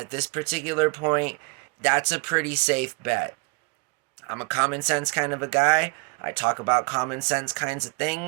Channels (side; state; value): left; quieter; 31.7 dB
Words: this particular point, that's a pretty safe bet. I'm a common sense kind of a guy. I talk about common sense kinds of